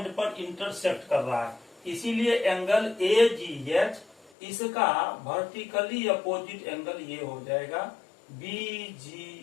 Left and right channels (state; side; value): drops out; right; at 4.3 s